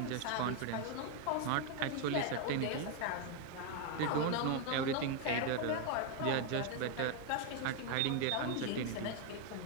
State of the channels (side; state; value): both; different; correlation 0.01